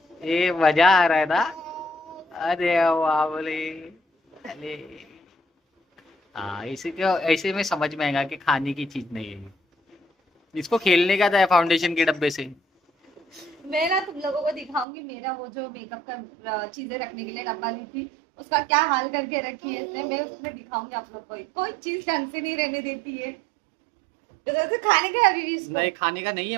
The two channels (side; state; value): left; drops out; at 14.9 s